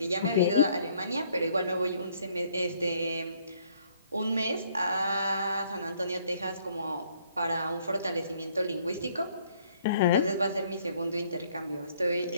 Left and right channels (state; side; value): inverted; both; correlation -0.64